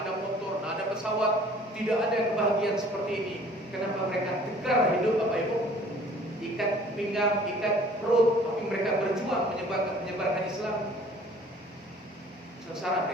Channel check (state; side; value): normal; both; correlation 0.52